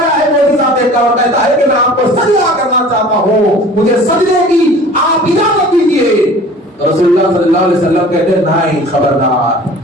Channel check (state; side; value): normal; both; correlation 0.45